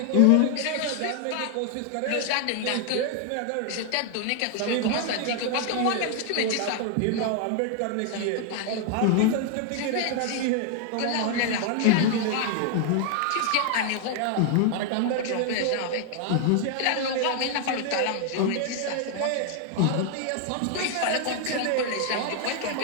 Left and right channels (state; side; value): different; both; correlation 0.00